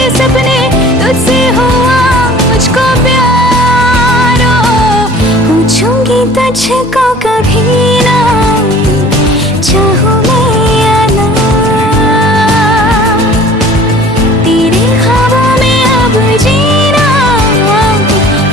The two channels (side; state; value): both; normal; correlation 0.47